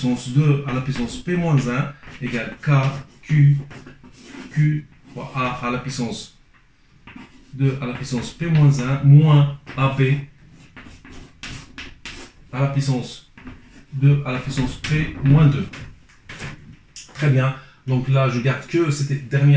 2 à la puissance p moins 1 égale k q fois a à la puissance 2 à la puissance p moins 1 moins ab à la puissance 2 à la puissance p moins 2. Très bien. Donc là, je garde que cette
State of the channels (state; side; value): identical; both; correlation 1.00